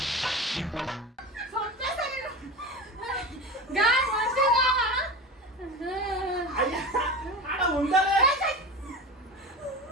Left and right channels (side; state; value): both; normal; correlation 0.28